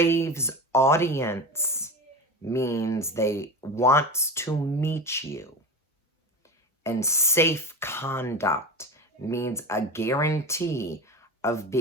audience means they wants to meet you. And safe conduct means a guarantee of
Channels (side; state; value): both; normal; correlation 0.26